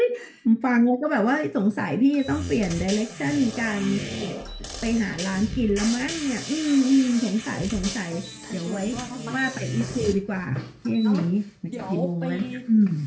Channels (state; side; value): identical; both; correlation 1.00